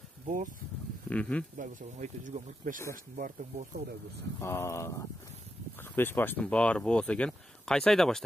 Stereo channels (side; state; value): both; normal; correlation 0.86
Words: боз. Кудай буйрса айта жүргөн 45 баштын баары тең болсо Кудай буйрса. 45 баштын баары болсо экен. Кайсы айда